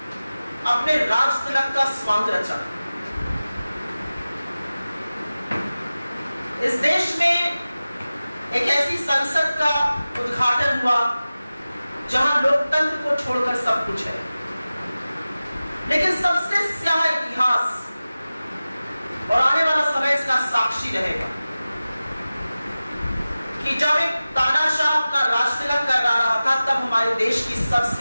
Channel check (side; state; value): both; inverted; correlation -0.96